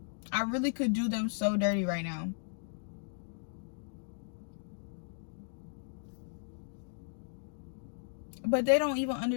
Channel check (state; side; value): silent; right; digital silence